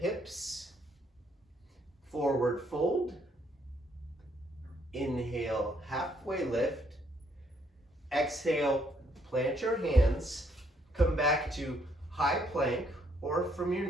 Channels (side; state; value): both; normal; correlation 0.70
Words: Forward fold. Inhale, halfway lift. Exhale, plant your hands. Come back to high plank or from your